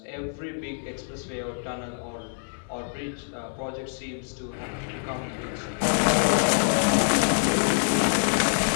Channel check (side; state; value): right; silent; 56 dB below the other